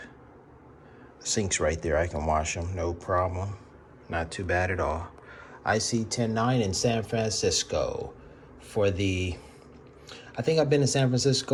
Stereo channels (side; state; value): both; identical; correlation 1.00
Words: The sink's right there, I can wash them, no problem. Not too bad at all. iSee109 in San Francisco for I think I've been to San